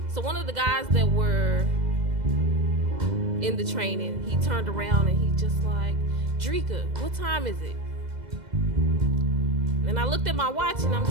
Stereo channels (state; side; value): late; left; 2.0 ms